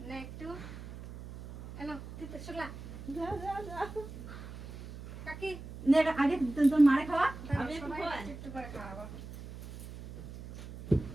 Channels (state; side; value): noise; right; hum, 12 dB below the sound